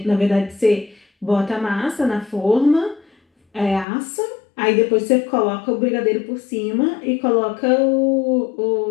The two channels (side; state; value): right; drops out; at 3.9 s